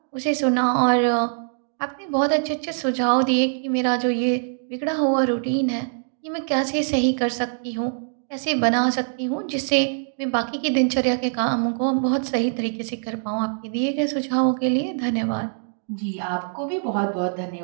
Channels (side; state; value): left; silent; digital silence